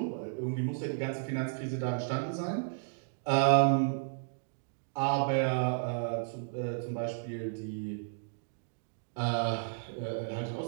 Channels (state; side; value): silent; left; digital silence